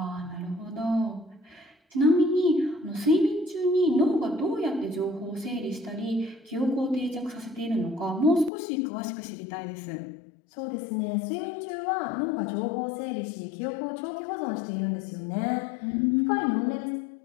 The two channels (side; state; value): right; drops out; at 8.5 s